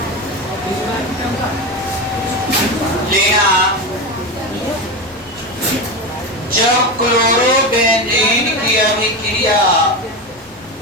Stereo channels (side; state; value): both; normal; correlation 0.19